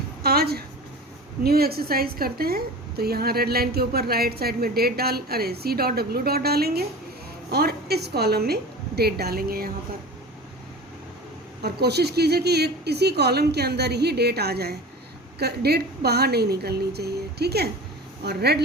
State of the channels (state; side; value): normal; both; correlation 0.35